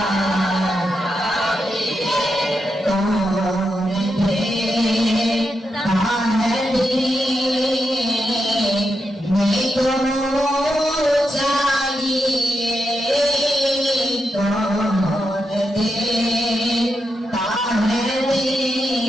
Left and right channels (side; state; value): both; normal; correlation 0.85